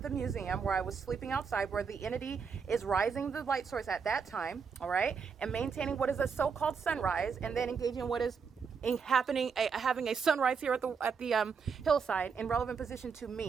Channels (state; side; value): quieter; left; 5.9 dB